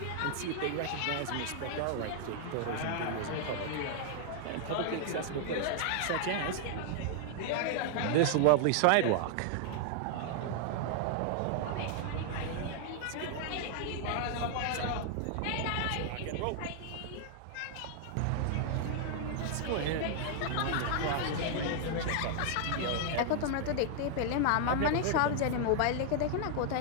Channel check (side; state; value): both; different; correlation 0.00